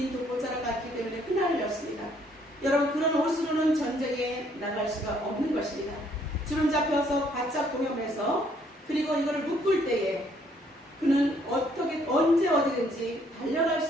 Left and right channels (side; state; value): both; normal; correlation 0.66